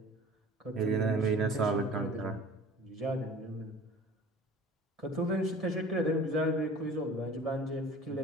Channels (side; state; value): both; normal; correlation 0.44